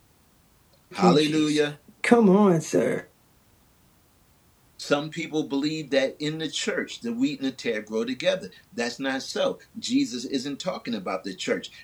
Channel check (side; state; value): both; identical; correlation 1.00